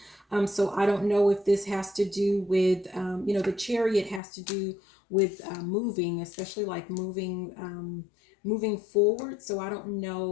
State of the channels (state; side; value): drops out; right; at 4.2 s